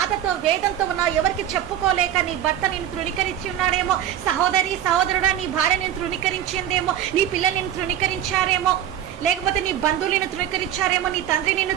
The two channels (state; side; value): quieter; left; 10.9 dB